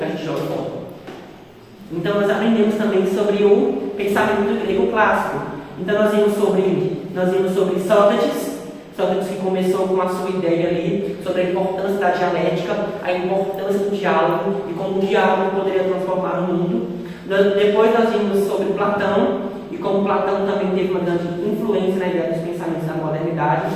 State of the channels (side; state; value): both; identical; correlation 1.00